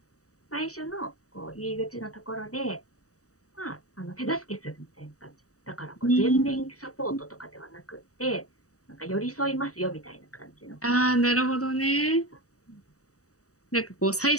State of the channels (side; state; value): right; late; 0.66 ms